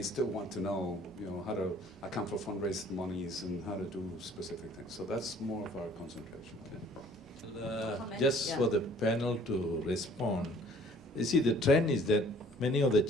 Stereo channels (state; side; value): normal; both; correlation 0.55